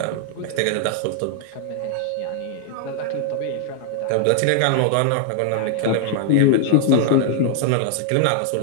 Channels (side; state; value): both; different; correlation 0.00